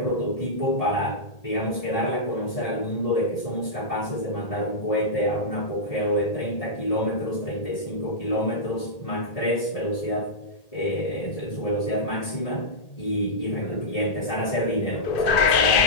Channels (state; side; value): late; right; 1.8 ms